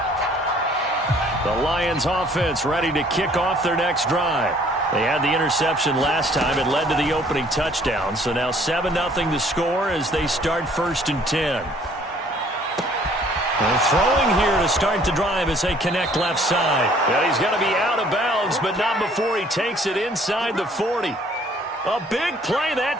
The Lions offense ready to kick off their next drive. They had the interception last time. It led to the opening touchdown. So now 7-0 to score as they start 1st and 10. And throwing here to start the drive as they connect left side. And he's going to be out of bounds, but not before he takes it inside the 40. A big play that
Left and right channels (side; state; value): both; normal; correlation 0.58